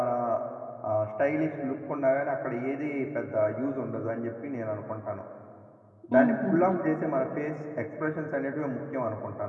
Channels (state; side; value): identical; both; correlation 1.00